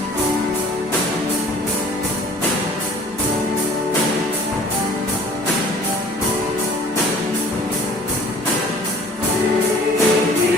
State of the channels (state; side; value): normal; both; correlation 0.50